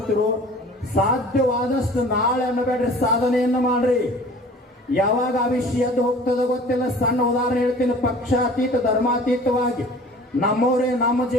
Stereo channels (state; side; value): normal; both; correlation 0.45